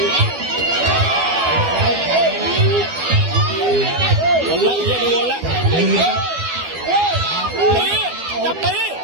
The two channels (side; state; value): left; late; 12 ms